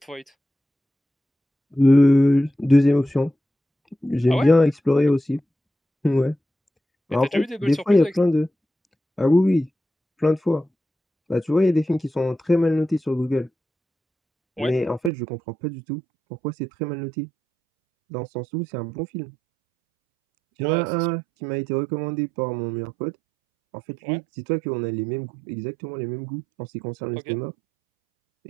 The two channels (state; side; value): drops out; left; at 15.1 s